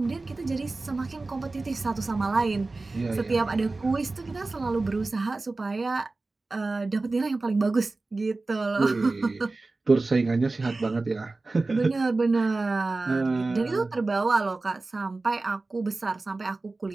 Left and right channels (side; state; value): left; quieter; 3.4 dB